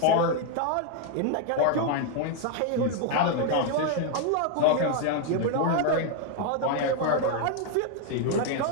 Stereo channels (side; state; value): both; different; correlation 0.01